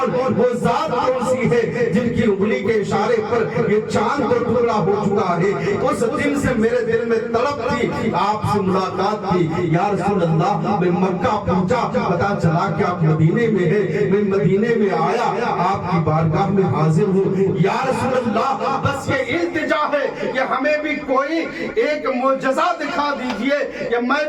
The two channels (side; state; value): both; identical; correlation 1.00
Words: وہ ذات کون سی ہے جن کی انگلی کے اشارے پر یہ چاند کو ٹکڑا ہو چکا ہے۔ اس دن سے میرے دل میں طلب تھی، آپ سے ملاقات تھی۔ یا رسول اللہ، میں مکہ پہنچا، پتا چلا کہ آپ مدینے میں ہیں، میں مدینے میں آیا، آپ کی بارگاہ میں حاضر ہوں۔ یا رسول اللہ، بس یہ التجا ہے کہ ہمیں بھی کوئی ایک معجزہ دکھا دیجئے کہ میں